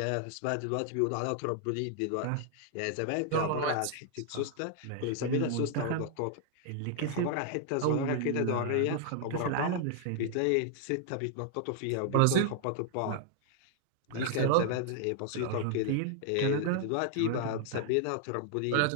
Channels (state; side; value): different; both; correlation 0.00